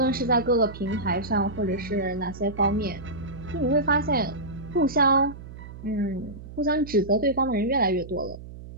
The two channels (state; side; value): noise; right; hum, 14 dB below the sound